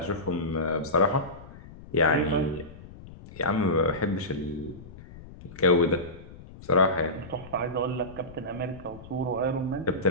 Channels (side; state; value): left; noise; rumble, 17 dB below the sound